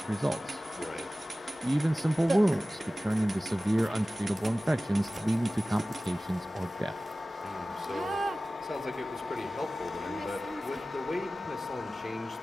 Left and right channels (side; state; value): both; normal; correlation 0.96